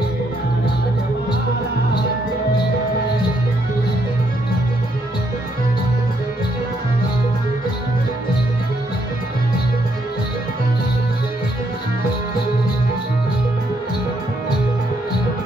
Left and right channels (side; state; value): both; normal; correlation 0.73